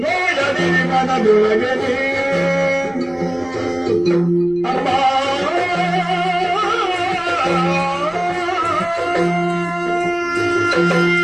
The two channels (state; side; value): noise; right; rumble, 28 dB below the sound